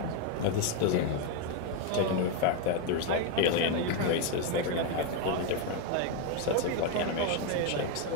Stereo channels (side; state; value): both; different; correlation 0.01